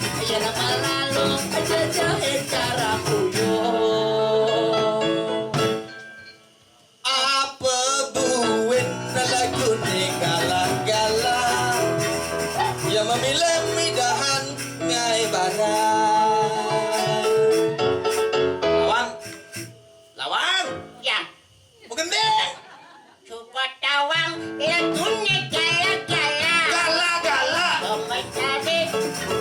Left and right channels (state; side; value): identical; both; correlation 1.00